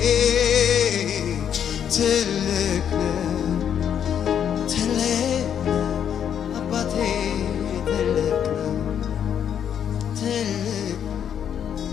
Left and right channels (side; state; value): right; quieter; 8.8 dB